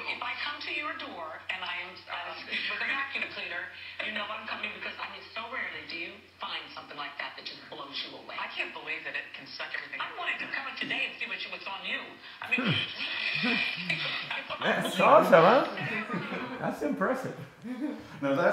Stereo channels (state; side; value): identical; both; correlation 1.00